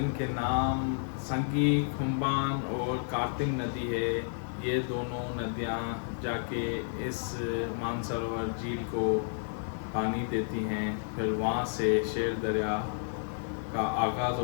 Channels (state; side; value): silent; right; digital silence